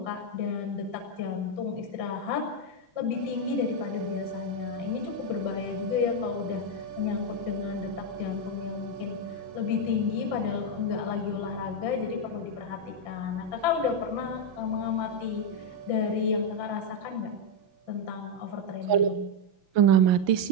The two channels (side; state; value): left; late; 5.9 ms